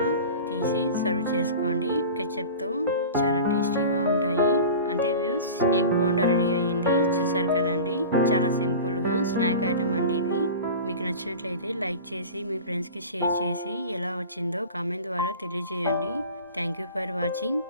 తీసి సర్వ్ చేసుకోండి. కెచప్తో చాలా టేస్టీగా ఉంటాయి. అంతే వ్యూస్, ఎగ్ బోండా రెడీ అయ్యింది. చూసారు కదండి, చాలా సింపుల్గా స్నాక్ ఐటమ్ అండి ఇది. మీకు నచ్చినట్లయితే లైక్ చేసి మీ ఫ్రెండ్స్కి షేర్ చేసి ఎలా వచ్చిందో కామెంట్ ద్వారా తెలియజేయండి. Thank you for watching.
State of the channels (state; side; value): inverted; both; correlation -0.35